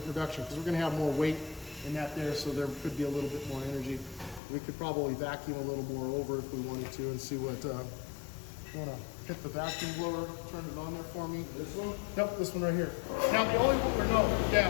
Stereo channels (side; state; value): right; drops out; at 4.4 s